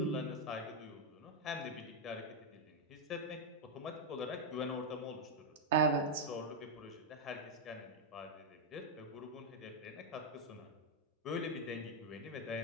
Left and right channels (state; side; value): normal; both; correlation 0.00